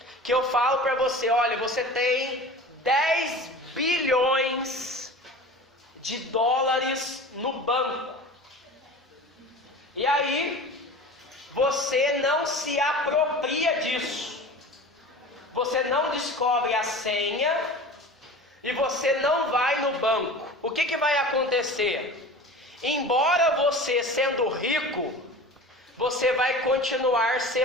que eu falo para você: olha, você tem 10 bilhões de dólares no banco. E aí, você não se apropria disso. Você não descobre a senha e você não vai no banco. O que vai acontecer? Embora você sendo rico, você vai continuar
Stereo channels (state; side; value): normal; both; correlation 0.36